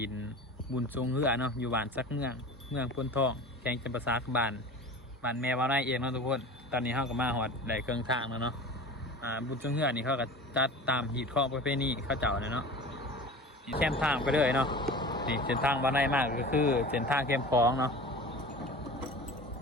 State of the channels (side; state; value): both; normal; correlation 0.36